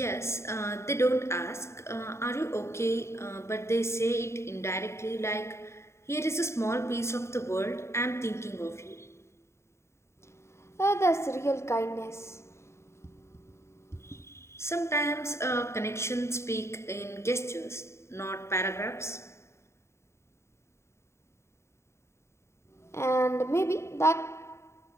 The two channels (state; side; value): late; right; 0.13 ms